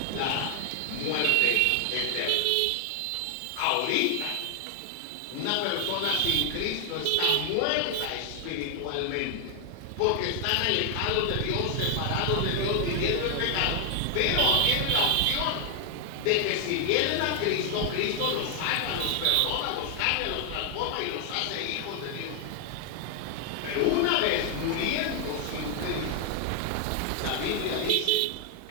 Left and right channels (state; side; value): different; both; correlation 0.00